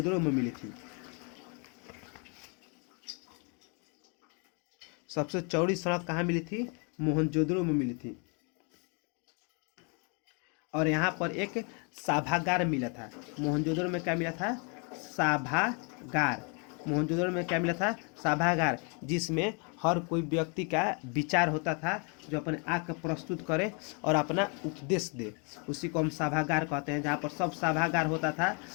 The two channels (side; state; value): right; quieter; 35.4 dB